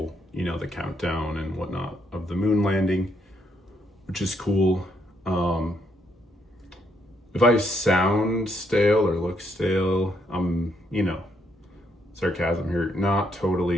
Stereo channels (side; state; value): both; normal; correlation 0.74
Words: the countdown and whatnot of the moon landing, which is cool. If I sound stale or look stale, I'm, sarcasm here, not